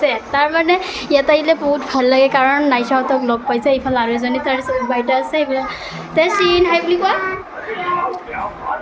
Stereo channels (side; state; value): both; identical; correlation 1.00